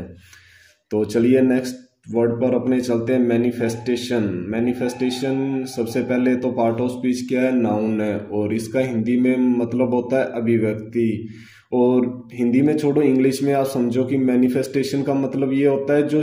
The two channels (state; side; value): identical; both; correlation 1.00